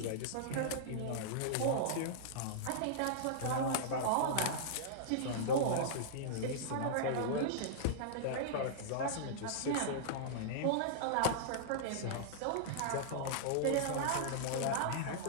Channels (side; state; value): both; different; correlation -0.02